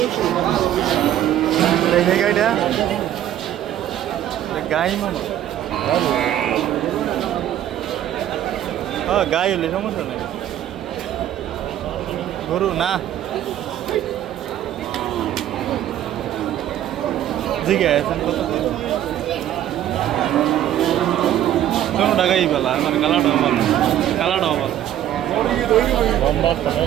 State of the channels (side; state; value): left; quieter; 11.7 dB